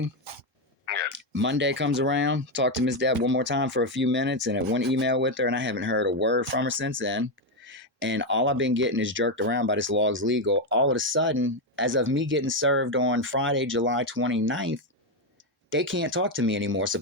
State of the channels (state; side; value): normal; both; correlation 0.06